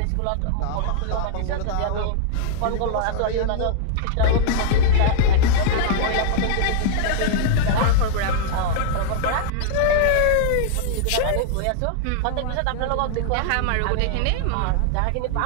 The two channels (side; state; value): both; different; correlation -0.01